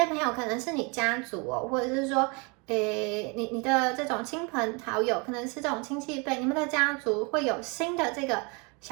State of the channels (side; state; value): left; quieter; 30.8 dB